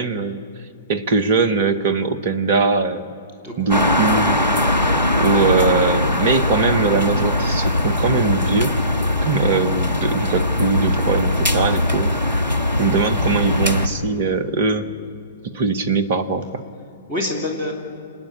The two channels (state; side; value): inverted; both; correlation -0.42